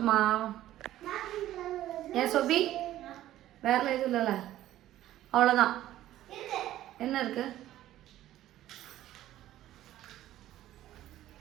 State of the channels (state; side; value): quieter; left; 13.7 dB